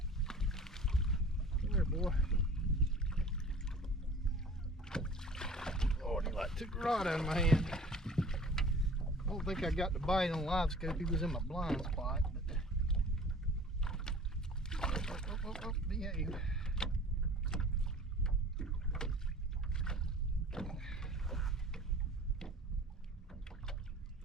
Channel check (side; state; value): both; normal; correlation 0.45